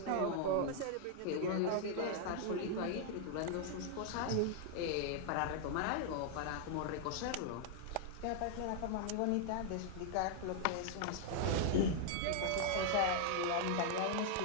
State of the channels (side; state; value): both; different; correlation 0.00